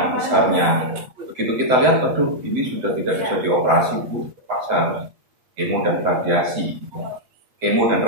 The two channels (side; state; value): left; late; 7.9 ms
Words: besarnya. Begitu kita lihat, aduh, ini sudah tidak bisa dioperasi, Bu, terpaksa kemo dan radiasi. Kemo dan